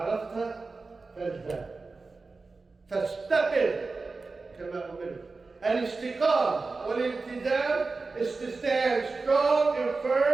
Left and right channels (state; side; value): quieter; left; 3.9 dB